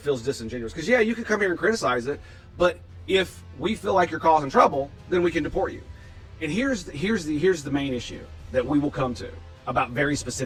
feels disingenuous. Because yeah, you can come here and criticize it, but if we feel like you're causing trouble, then we can deport you. And here's the main issue that we will come to about very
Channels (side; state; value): both; identical; correlation 1.00